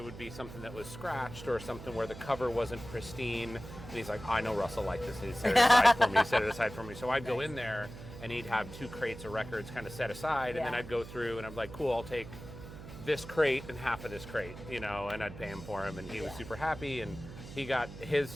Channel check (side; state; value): right; noise; hum, 13 dB below the sound